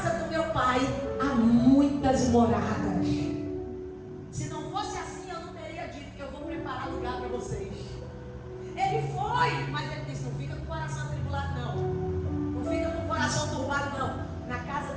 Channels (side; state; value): both; identical; correlation 1.00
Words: do meu pai há muitas moradas. Se não fosse assim, eu não teria dito que eu vou preparar lugar para vocês. Ele foi, mas ele disse: não fica com o coração atribulado não. Não fica com o coração turbado não. Na casa